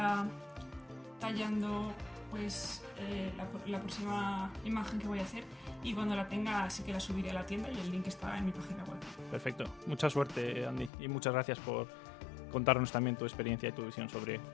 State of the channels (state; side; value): drops out; right; at 10.9 s